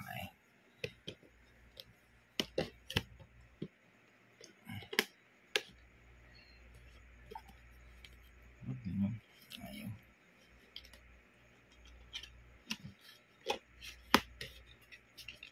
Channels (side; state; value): both; identical; correlation 1.00